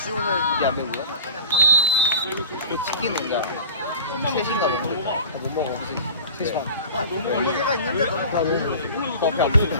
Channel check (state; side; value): inverted; both; correlation -0.39